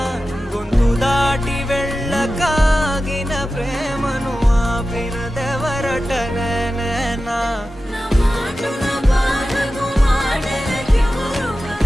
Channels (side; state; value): both; normal; correlation 0.93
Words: గొంతు దాటి వెళ్ళకాగిన ప్రేమను ఆపినదెవరట నేనా